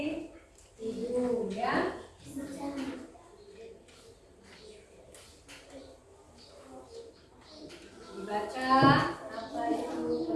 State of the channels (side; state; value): both; identical; correlation 1.00